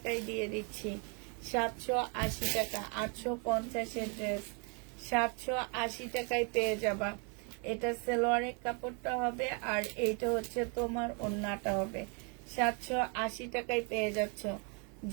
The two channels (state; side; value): quieter; left; 36.3 dB